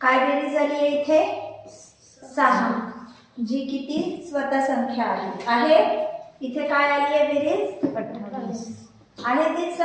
बेरीज झाली आहे इथे? 6, जी किती स्वतः संख्या आहे. इथे काय आली आहे बेरीज? 28. आहे तीच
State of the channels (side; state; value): both; identical; correlation 1.00